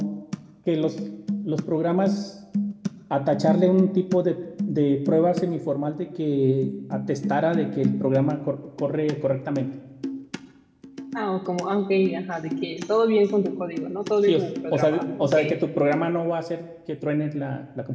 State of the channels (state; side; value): identical; both; correlation 1.00